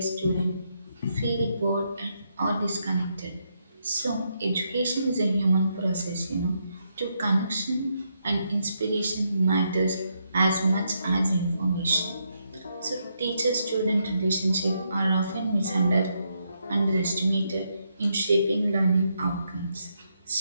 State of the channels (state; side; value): inverted; both; correlation -0.79